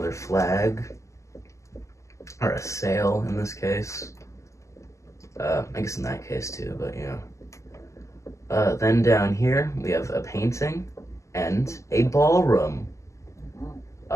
flag, or a sail in this case. I guess in that case too, but yeah. Then down here we have a painting and a ballroom.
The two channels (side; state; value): right; late; 0.15 ms